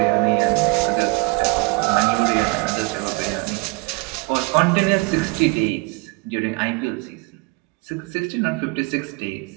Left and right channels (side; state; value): left; quieter; 27.1 dB